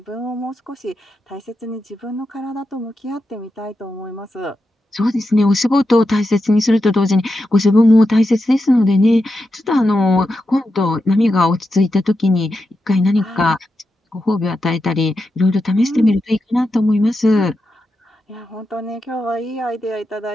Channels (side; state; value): both; normal; correlation 0.88